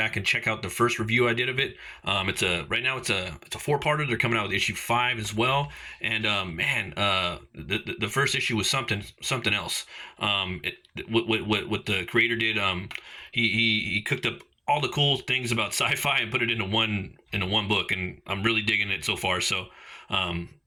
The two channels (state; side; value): identical; both; correlation 1.00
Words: and check out the first review I did of it. Right now it's a four-parter. They're coming out with issue 5 as well. And the first issue was something else. What the creator did, he cooked up all the cool things about sci-fi and put it into one book, and I'm really digging it so far. So.